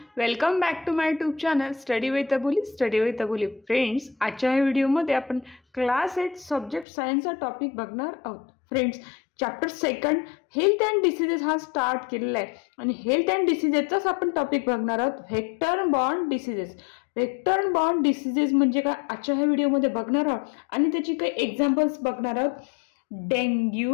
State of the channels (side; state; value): right; drops out; at 6.9 s